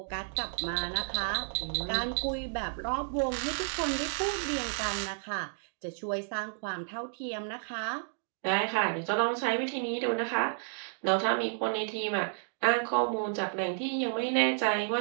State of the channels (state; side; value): silent; left; digital silence